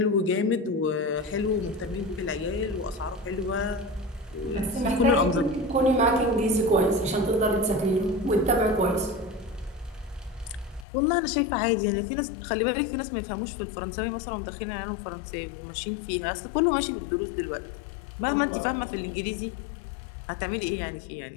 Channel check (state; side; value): drops out; right; at 10.9 s